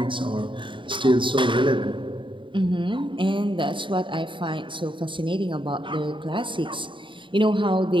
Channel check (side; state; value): left; late; 0.24 ms